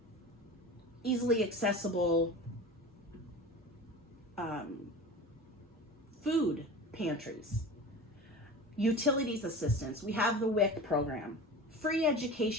easily accessible food pantries, utilities assistance. We have the WIC program. Free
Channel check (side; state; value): both; normal; correlation 0.33